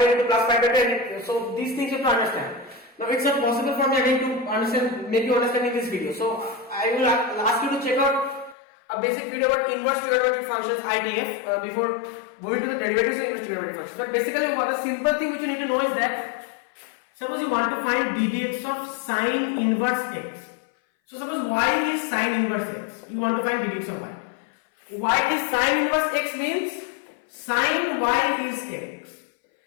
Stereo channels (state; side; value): drops out; right; at 8.6 s